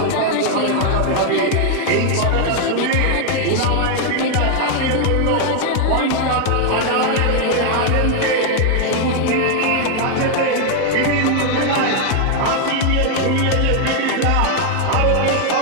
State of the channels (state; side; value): different; both; correlation 0.00